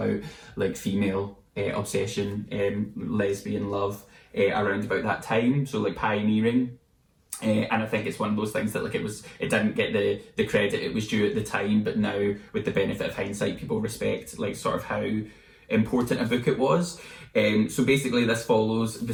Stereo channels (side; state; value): both; identical; correlation 1.00